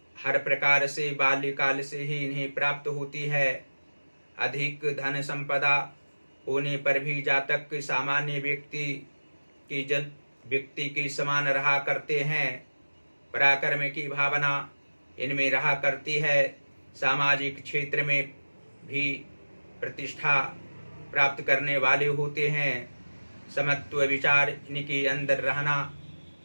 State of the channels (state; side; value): inverted; both; correlation -1.00